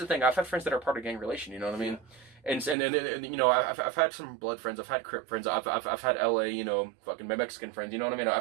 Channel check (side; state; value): left; drops out; at 2.8 s